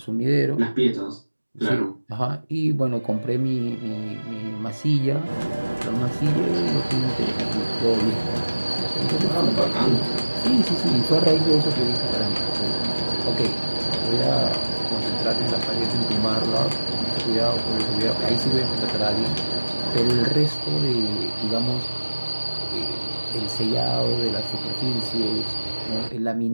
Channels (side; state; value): both; inverted; correlation -1.00